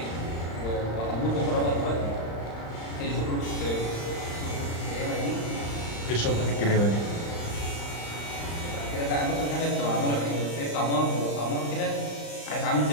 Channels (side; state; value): right; late; 35 ms